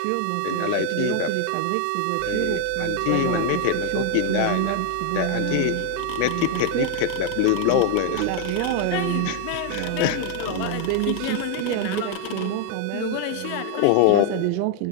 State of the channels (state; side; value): different; both; correlation 0.00